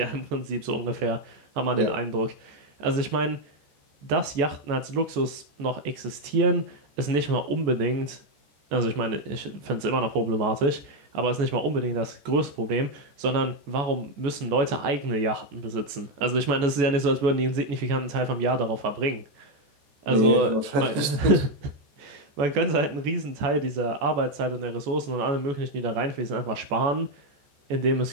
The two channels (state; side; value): late; left; 14 ms